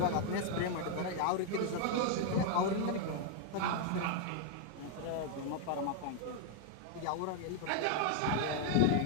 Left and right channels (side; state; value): both; different; correlation 0.00